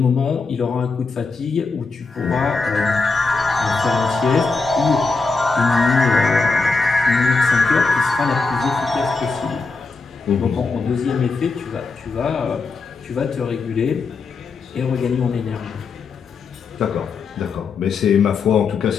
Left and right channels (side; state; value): right; quieter; 4.3 dB